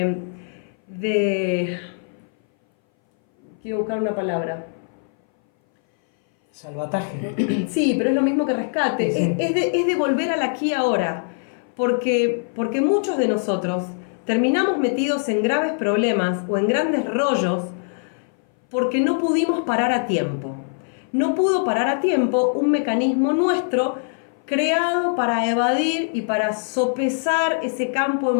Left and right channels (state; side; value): silent; right; 60 dB below the other